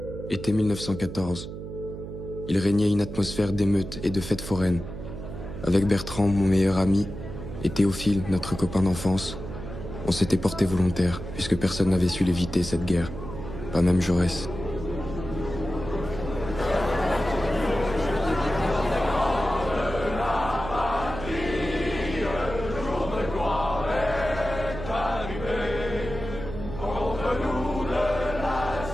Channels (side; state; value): right; noise; hum, 9 dB below the sound